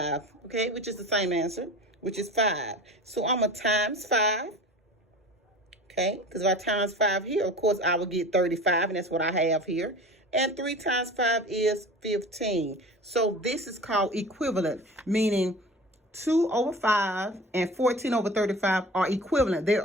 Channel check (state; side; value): normal; both; correlation 0.38